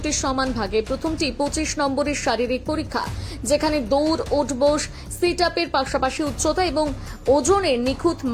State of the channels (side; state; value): both; identical; correlation 1.00